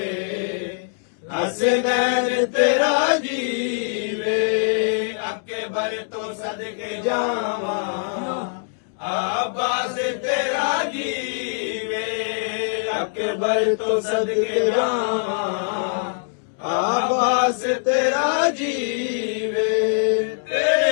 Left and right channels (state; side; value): silent; right; digital silence